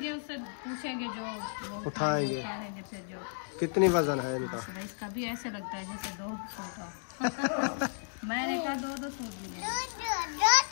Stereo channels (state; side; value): silent; right; digital silence